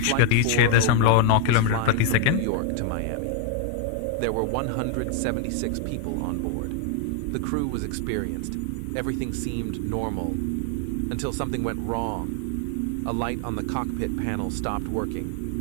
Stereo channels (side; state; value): both; different; correlation 0.00